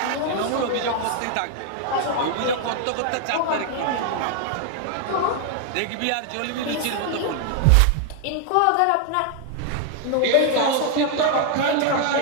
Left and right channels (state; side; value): different; both; correlation 0.00